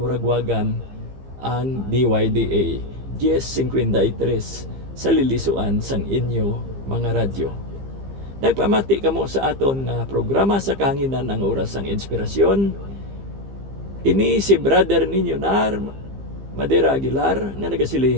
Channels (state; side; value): late; left; 15 ms